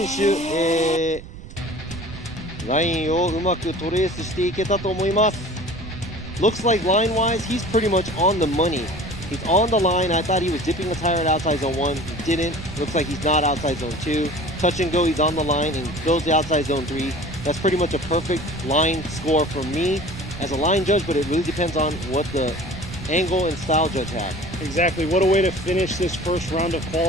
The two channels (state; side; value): noise; right; rumble, 14 dB below the sound